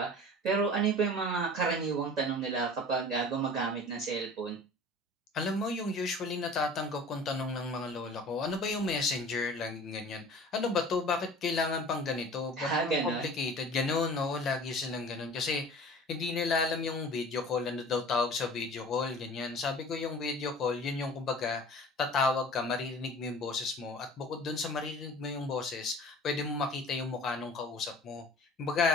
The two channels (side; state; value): both; normal; correlation 0.43